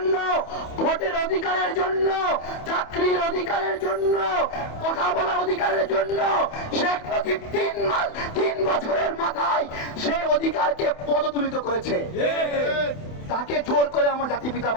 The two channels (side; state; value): right; late; 28 ms